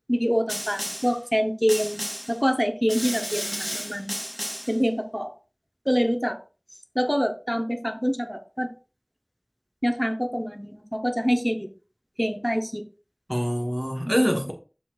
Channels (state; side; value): identical; both; correlation 1.00